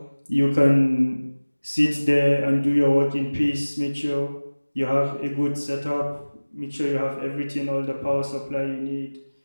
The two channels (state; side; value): inverted; both; correlation -1.00